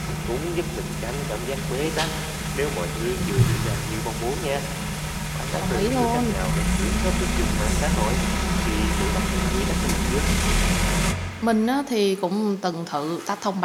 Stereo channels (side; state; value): both; identical; correlation 1.00